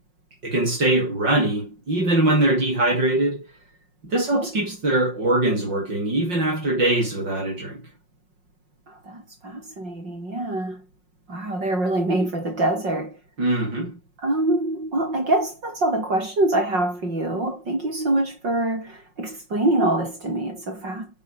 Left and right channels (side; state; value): left; late; 5.5 ms